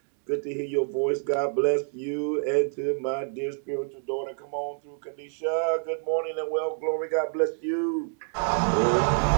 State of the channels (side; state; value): left; silent; 60 dB below the other